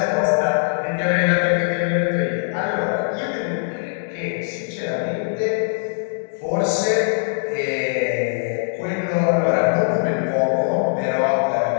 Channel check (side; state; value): right; silent; digital silence